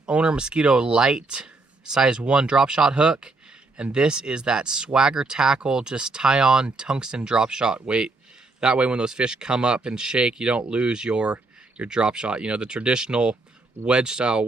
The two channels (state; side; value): quieter; left; 3.4 dB